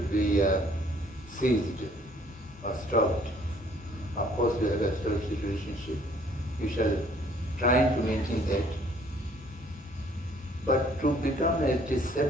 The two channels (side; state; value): both; normal; correlation 0.59